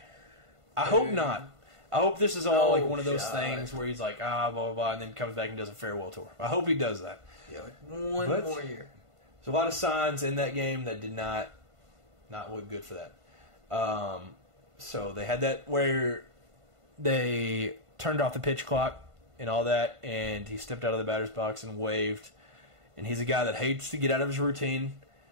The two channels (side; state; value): left; late; 1.5 ms